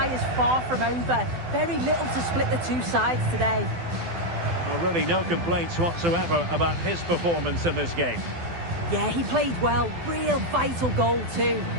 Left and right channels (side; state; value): left; late; 12 ms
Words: is far from over. Very little to split the two sides today. Well, really no complaints whatsoever about his performance in this game. Yeah, he played well. Real vital goal too.